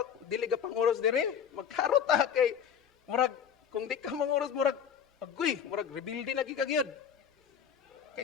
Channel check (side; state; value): right; quieter; 8.0 dB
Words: dili ga panguros dire. Magkaro ta kay murag kung di ka manguros murag agoy, murag rebuilding lagi ka gyud. Kay